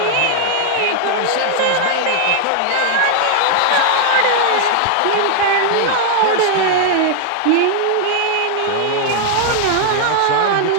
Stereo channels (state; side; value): different; both; correlation 0.00